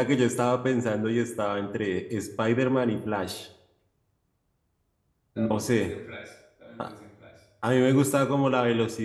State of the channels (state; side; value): identical; both; correlation 1.00